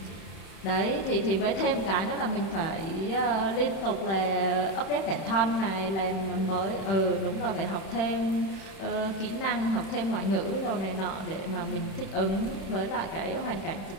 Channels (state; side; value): late; right; 31 ms